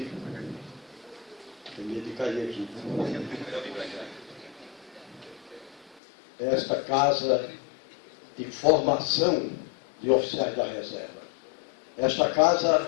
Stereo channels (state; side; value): drops out; right; at 6.0 s